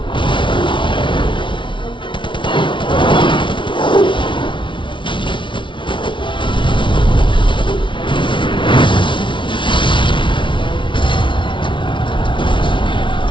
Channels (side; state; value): right; late; 0.24 ms